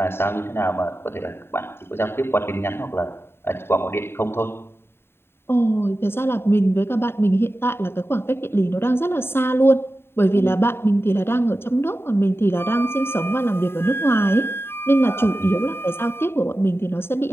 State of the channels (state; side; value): late; right; 0.11 ms